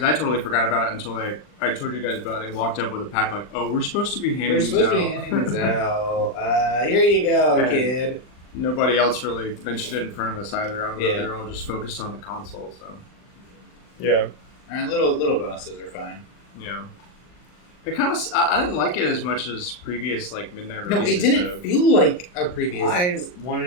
I totally forgot about it until I told you guys about it. They walked up with a pack like, oh, we're supposed to be handing these out. We're supposed to be handing these out. Here you go, And kid. Nobody else really mentioned it in front of us either. I don't know, Yeah. they're all just focused on the console, so. Yeah. And little bonuses are fine. Yeah. It kind of, I didn't like it as much as previous, like, midnight No, releases. it didn't feel like a previous. I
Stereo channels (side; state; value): right; late; 39 ms